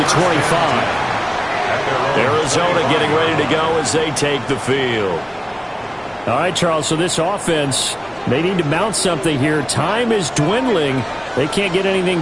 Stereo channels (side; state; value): both; identical; correlation 1.00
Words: 25. Arizona getting ready to go as they take the field. All right, Charles, so this offense, they need to mount something here. Time is dwindling. They can't get anything